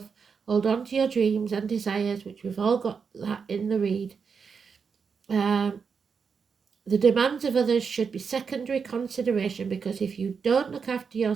hold on to your dreams and desires, which we've all got that in the read. The demands of others should be secondary consideration, because if you don't look after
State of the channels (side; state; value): left; quieter; 5.8 dB